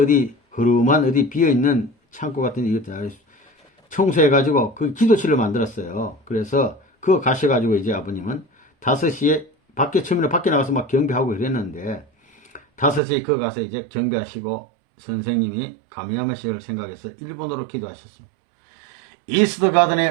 어디 흐름한 어디 비어있는 창고 같은 데 청소해가지고 그 기도실을 만들었어요. 그래서 그거 가셔가지고 이제 아버님은 5시에 처음에는 밖에 나가서 막 경배하고 그랬는데 5시에 거 가서 이제 경배하시고 선생님이 가미야마 씨를 생각해서 일본어로 기도하셨습니다. 이스트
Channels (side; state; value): left; drops out; at 13.0 s